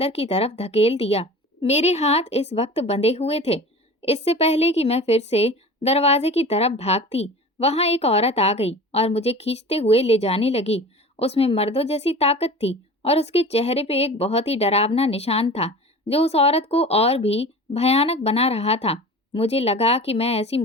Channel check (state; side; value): normal; both; correlation 0.37